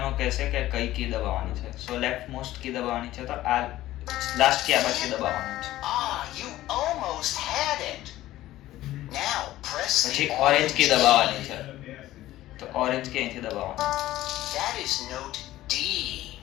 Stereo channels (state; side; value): quieter; right; 15.2 dB